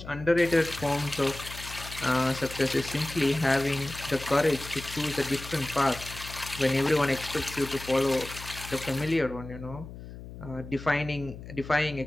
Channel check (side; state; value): left; noise; hum, 13 dB below the sound